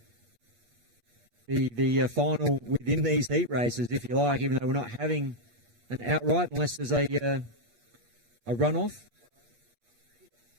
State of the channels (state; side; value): late; left; 8.4 ms